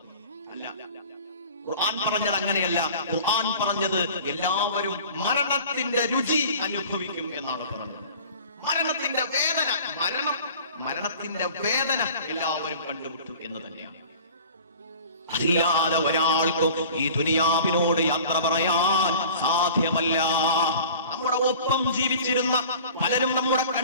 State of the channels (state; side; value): inverted; both; correlation -0.44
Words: അല്ല. ഖുർആൻ പറഞ്ഞത് അങ്ങനെയല്ല. ഖുർആൻ പറഞ്ഞത് എല്ലാവരും മരണത്തിന്റെ രുചി അനുഭവിക്കും എന്നാണ് പറഞ്ഞത്. മരണത്തിന്റെ വേദന എല്ലാവരും കണ്ടുമുട്ടും എന്ന് തന്നെയാണ്. അതില്ലാതെ ഒരാൾക്കും ഈ ദുനിയാവിനോട് യാത്ര പറയാൻ സാധ്യമല്ല. നമ്മുടെ ഒപ്പം ജീവിച്ചിരുന്ന പലരും നമ്മുടെ